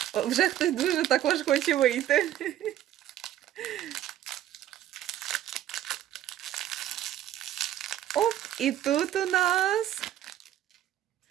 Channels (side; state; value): left; quieter; 12.3 dB